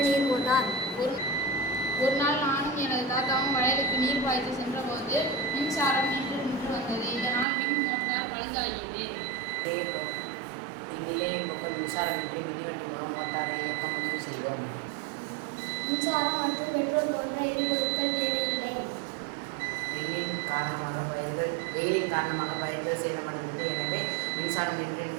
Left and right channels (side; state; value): left; drops out; at 7.5 s